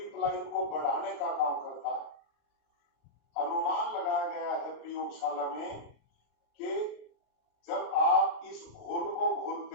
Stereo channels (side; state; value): right; late; 33 ms